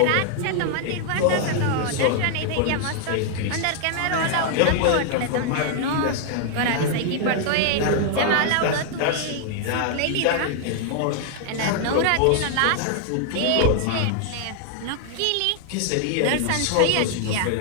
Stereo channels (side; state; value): both; different; correlation 0.00